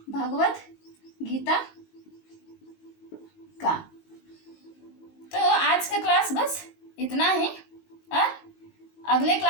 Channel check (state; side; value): late; right; 19 ms